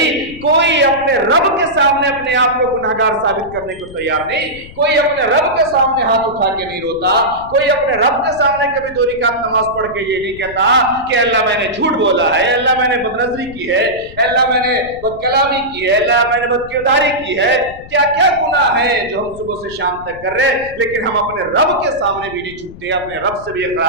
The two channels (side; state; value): left; noise; rumble, 18 dB below the sound